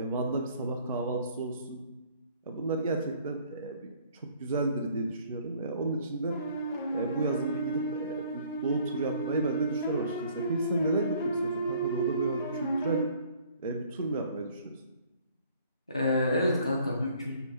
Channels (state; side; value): inverted; both; correlation -0.58